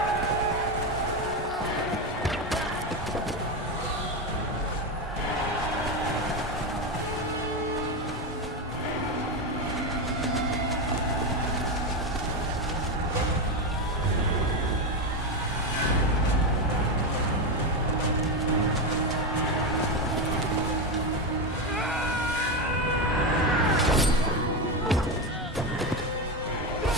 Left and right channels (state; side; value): normal; both; correlation 0.13